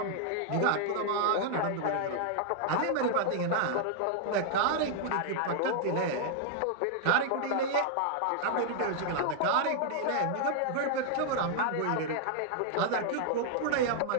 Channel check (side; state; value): both; different; correlation 0.00